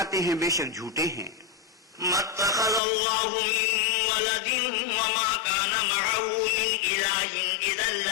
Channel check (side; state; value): right; drops out; at 2.8 s